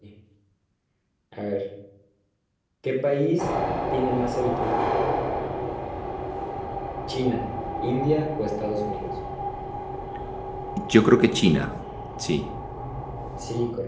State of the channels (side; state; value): both; identical; correlation 1.00